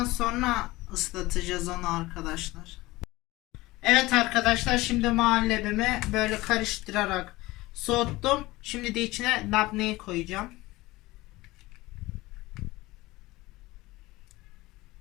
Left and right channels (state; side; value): quieter; right; 19.7 dB